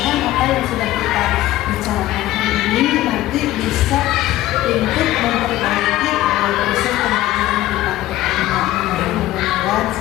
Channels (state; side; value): quieter; right; 15.4 dB